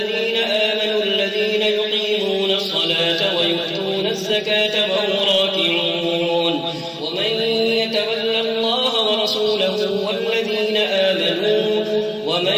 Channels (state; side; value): identical; both; correlation 1.00